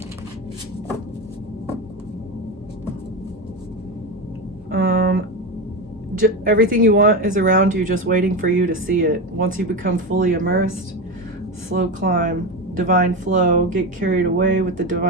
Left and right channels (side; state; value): both; normal; correlation 0.17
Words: Everything you want is around you, just waiting for you to see it. Once you become fully immersed, slow climb, divine flow, get carried away with the